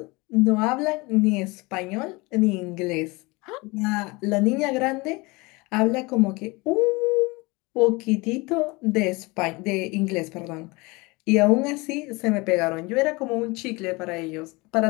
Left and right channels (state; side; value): quieter; right; 24.8 dB